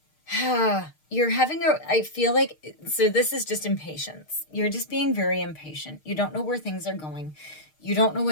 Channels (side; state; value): right; late; 6.5 ms